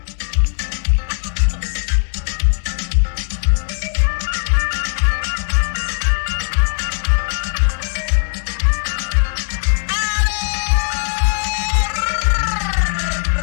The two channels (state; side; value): silent; right; 67 dB below the other